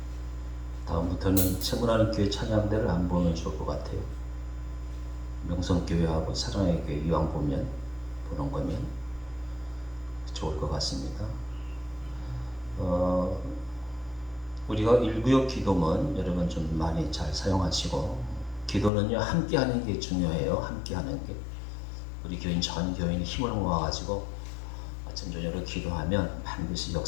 다음부터는 세문하는 교회 찬양대를 안 보면 좋을 것 같아요. 명성교회하고 사랑의 교회 이왕 보는 거면 좋을 것 같습니다. 우리가 일구역 기도문 여러분 좀 많이 잘 사용하시고, 기도는요 함께 하는 게 중요해요. 함께 하는 게. 우리 교인 전 교인이 힘을 모아가지고 아침 저녁으로 기도하면 반드시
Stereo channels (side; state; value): right; drops out; at 18.9 s